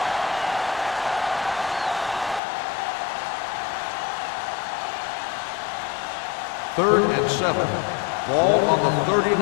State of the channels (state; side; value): drops out; right; at 2.4 s